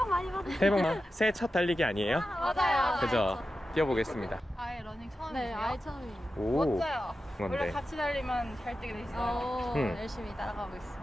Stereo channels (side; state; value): both; normal; correlation 0.92